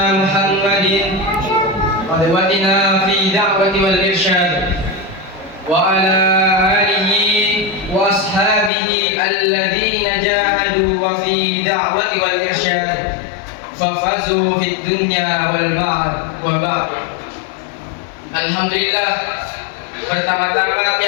Muhammadin qudwatina fi da'wati wal irsyad wa ala alihi wa ashabihi alladhina jahadu wa fi da'wati wal irsyad fafazu fid dunya wal ba'd wa ba'd. Alhamdulillah, pertama-tama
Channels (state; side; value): drops out; right; at 8.7 s